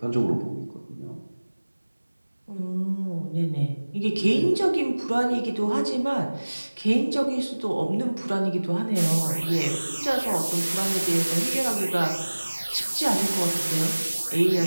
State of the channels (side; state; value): both; inverted; correlation -1.00